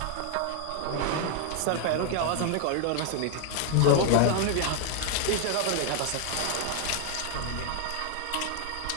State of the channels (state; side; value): different; both; correlation 0.00